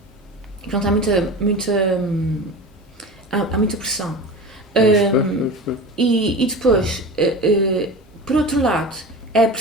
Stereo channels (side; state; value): both; normal; correlation 0.31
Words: pronto, há muita pressão. E depois, por outro lado, é a